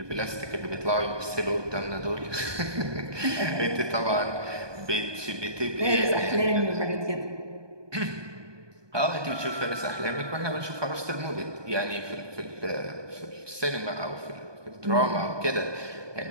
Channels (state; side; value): late; left; 1.2 ms